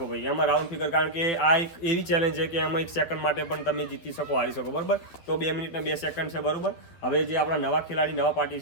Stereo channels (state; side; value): late; right; 12 ms